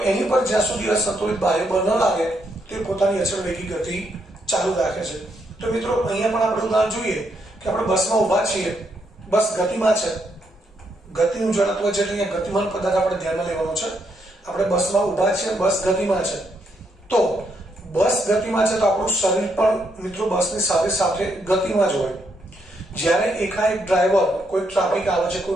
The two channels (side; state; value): both; normal; correlation 0.77